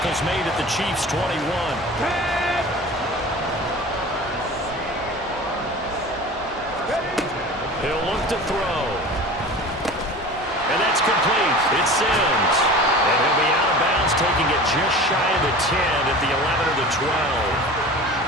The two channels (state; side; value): normal; both; correlation 0.37